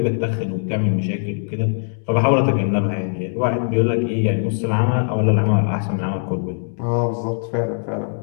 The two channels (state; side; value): silent; right; digital silence